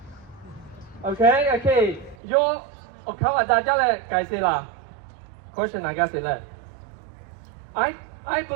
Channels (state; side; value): drops out; left; at 2.1 s